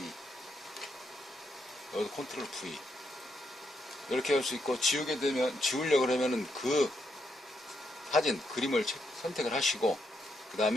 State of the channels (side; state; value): both; normal; correlation 0.79